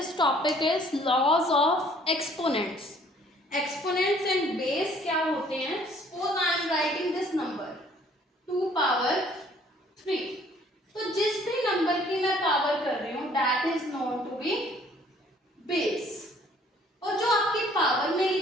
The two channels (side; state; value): both; normal; correlation 0.58